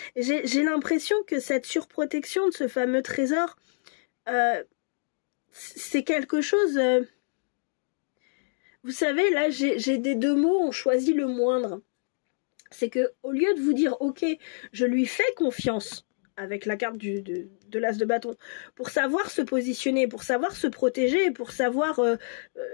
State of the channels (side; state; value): right; silent; digital silence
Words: J'ai l'impression que cette surprotection de ce fameux trésor, c'est quelque chose... Vous savez, là, j'ai des deux mots, on choisit le moindre. C'est que au lieu de vous dire, ok, je lui fais confiance, avec la carte de l'as de bâton, pour savoir se positionner, pour savoir se protéger, pour savoir